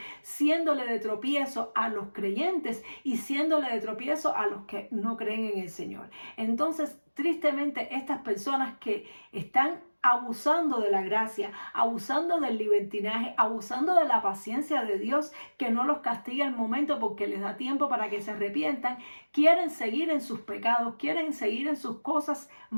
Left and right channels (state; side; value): inverted; both; correlation -1.00